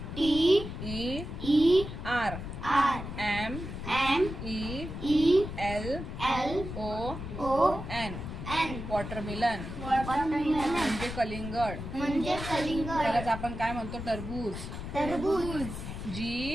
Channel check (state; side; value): noise; left; rumble, 8 dB below the sound